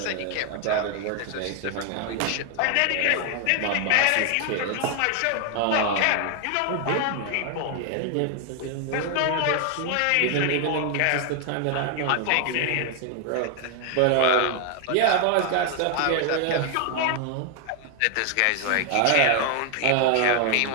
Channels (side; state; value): both; different; correlation 0.00